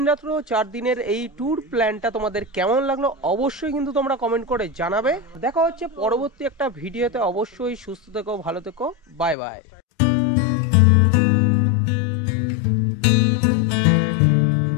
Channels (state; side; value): drops out; right; at 9.3 s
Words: রাত্র 4 দিনের এই ট্যুর প্ল্যানটা তোমাদের কেমন লাগলো অবশ্যই কিন্তু তোমরা কমেন্ট করে জানাবে। দেখা হচ্ছে পরবর্তী একটা ভিডিওতে, অবশ্যই সুস্থ থেকো, ভালো থেকো, বাই বাই।